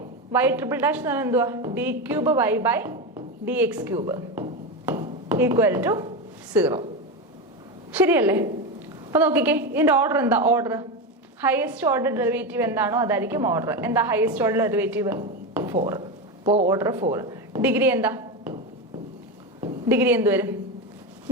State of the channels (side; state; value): both; normal; correlation 0.16